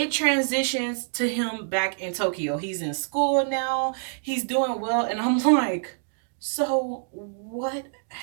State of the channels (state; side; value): silent; left; digital silence